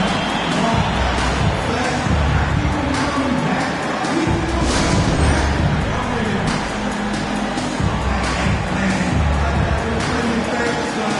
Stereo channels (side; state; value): both; identical; correlation 1.00